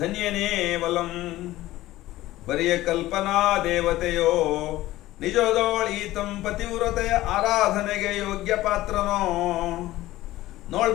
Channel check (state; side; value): quieter; right; 16.3 dB